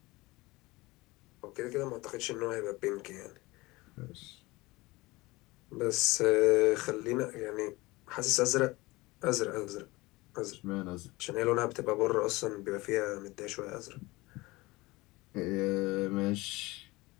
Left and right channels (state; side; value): quieter; right; 21.7 dB